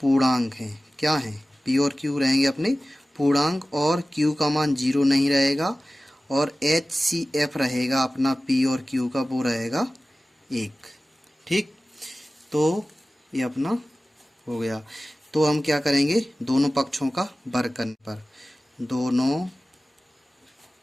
पूर्णांक हैं। क्या हैं? P और Q रहेंगे अपने पूर्णांक, और Q का मान 0 नहीं रहेगा, और HCF रहेगा अपना P और Q का, वो रहेगा 1। ठीक, तो ये अपना हो गया। तो हम क्या करेंगे? दोनों पक्षों का वर्ग करने पर, दोनों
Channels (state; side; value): normal; both; correlation 0.97